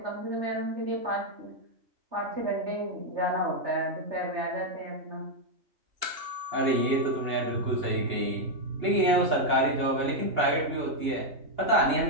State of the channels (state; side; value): late; left; 2.9 ms